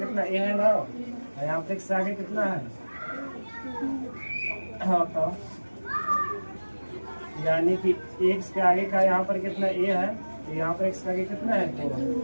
a है ना, यहाँ पे x के आगे कितना है। हाँ तो यानी कि x के आगे का यहाँ पर कितना a है, तो यहाँ पर x के आगे कितना है 2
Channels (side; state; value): both; inverted; correlation -1.00